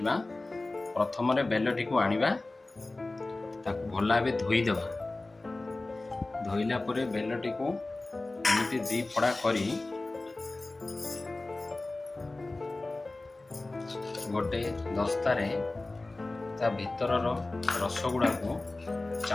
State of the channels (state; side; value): quieter; right; 3.0 dB